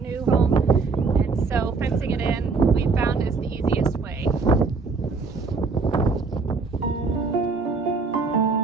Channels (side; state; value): left; quieter; 4.4 dB